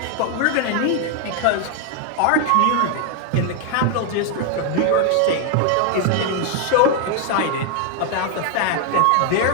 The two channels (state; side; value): different; both; correlation 0.00